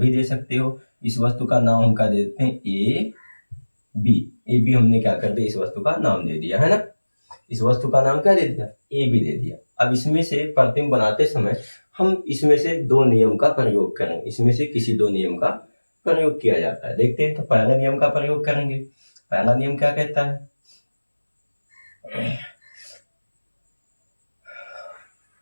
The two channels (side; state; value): both; inverted; correlation -1.00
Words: दे सकते हो। इस वस्तु का नाम हम क्या देते हैं, ए बी। ए बी हमने क्या कर दिया, इस वस्तु का नाम दे दिया, है ना। इस वस्तु का नाम क्या दे दिया, ए बी दे दिया। अब इसमें से प्रतिबिंब बनाते समय हम इसमें से 2 नियम का प्रयोग करेंगे। इसमें से किसी 2 नियम का प्रयोग किया जाता है। देखते हैं, तो पहला नियम का प्रयोग करेंगे। पहला नियम क्या कहता है,